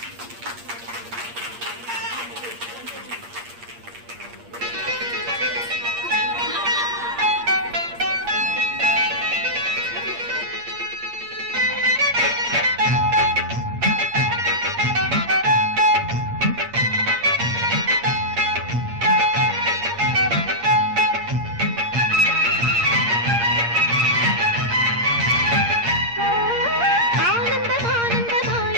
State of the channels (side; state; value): left; late; 8.6 ms